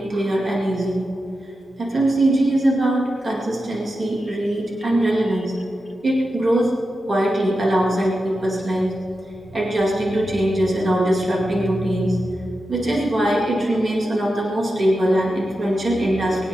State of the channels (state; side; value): normal; both; correlation 0.90